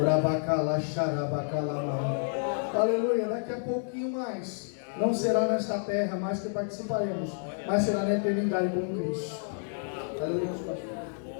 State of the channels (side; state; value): right; silent; digital silence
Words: Aleluia, daqui a pouquinho mais. Não será nesta terra mais que participaremos, mas será na eternidade com Cristo. Aleluia.